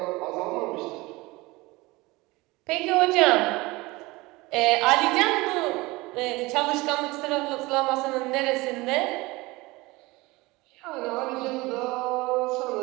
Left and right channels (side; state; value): left; quieter; 22.1 dB